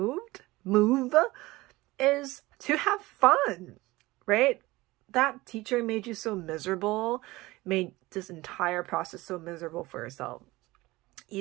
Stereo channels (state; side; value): quieter; left; 20.0 dB